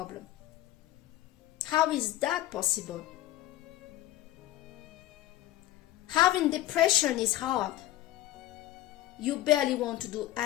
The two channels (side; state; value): right; quieter; 15.1 dB